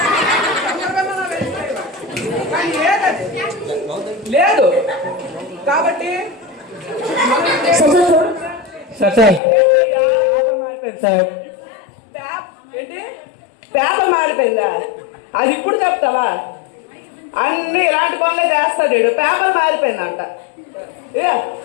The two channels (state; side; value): drops out; right; at 9.4 s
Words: లేదు కాబట్టి ఏంటి పేపర్ మారిపోయిందా? అది ఇప్పుడు చెప్తావా? అన్ని ఇలాంటి పనులే చేస్తాడు వీడు. పేపర్ మారిపోయిందంట.